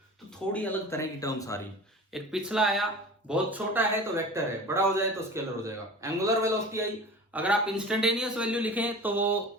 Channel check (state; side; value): normal; both; correlation 0.37